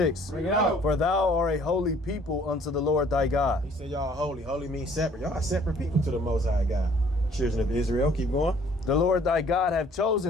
Bring it out. For thou art a holy people unto the Lord thy God. He said y'all holy. Holy means separate. Y'all are separate people to the Most High God. Children of Israel. Keep going. The Lord thy God hath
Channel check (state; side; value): normal; both; correlation 0.58